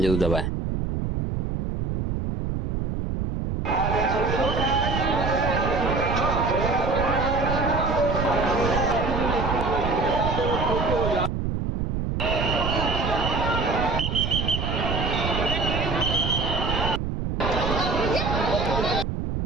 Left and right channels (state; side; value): noise; right; rumble, 2 dB below the sound